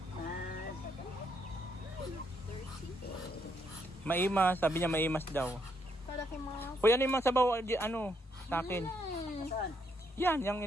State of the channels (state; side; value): normal; both; correlation 0.75